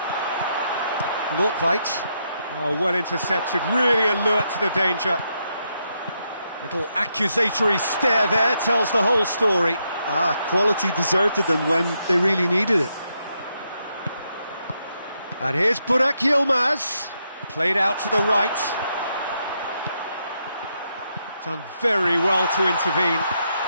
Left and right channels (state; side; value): inverted; both; correlation -0.80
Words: Nordtveit. Oh, well intercepted, really alert to the danger. Little accusatory stare there tells the whole story. Quality deserted them when they really needed it. And here's Burak Yilmaz, played out to the right. Done very well to intervene.